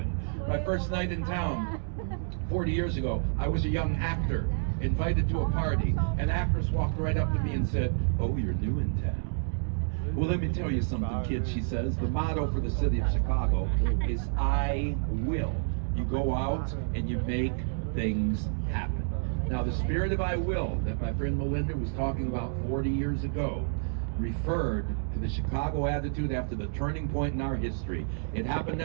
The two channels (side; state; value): left; silent; digital silence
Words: My first night in town 40 years ago, I was a young actor invited to a party. An actress walked right up to me and said, "Oh, you're new in town." Well, let me tell you something, kids, she says. The motto for the city of Chicago is I will. You go out and you make things happen. Now, the spirit of I will that my friend Melinda was talking about 40 years ago referred to the Chicago attitude after the turning point in our history. It happened